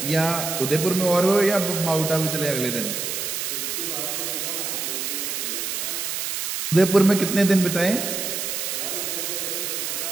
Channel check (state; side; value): noise; right; hiss, 3 dB below the sound